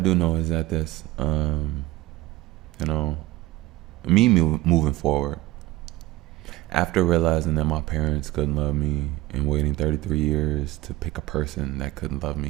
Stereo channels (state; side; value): quieter; left; 17.4 dB